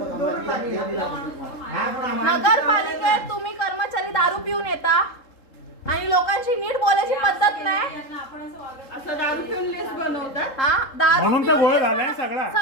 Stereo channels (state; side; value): late; right; 3.7 ms